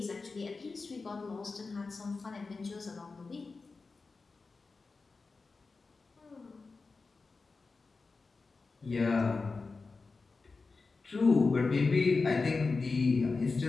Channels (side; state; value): right; quieter; 4.1 dB